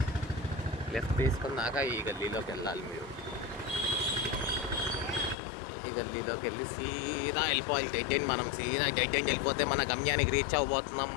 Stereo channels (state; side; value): drops out; right; at 5.4 s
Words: లెఫ్ట్ తీసుకున్నాక ఈ గల్లీలోకి వెళ్ళాలి. మీరు ఈ గల్లీలోకి వెళ్ళి సీదా వెళ్ళిపోవాలి. Dead end. మనం సీదా డెడ్ ఎండ్ వెళ్ళిపోతే మన గమ్యానికి రీచ్ అవ్వబోతున్నాం